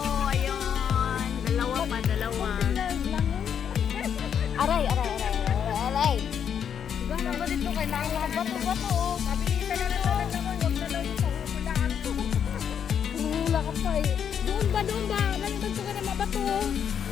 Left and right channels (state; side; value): quieter; right; 8.2 dB